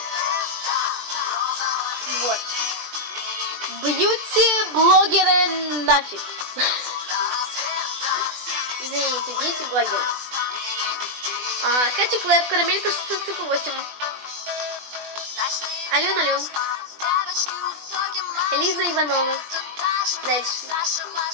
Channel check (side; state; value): left; late; 20 ms